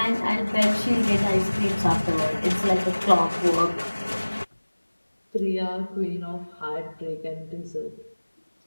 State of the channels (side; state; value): both; inverted; correlation -1.00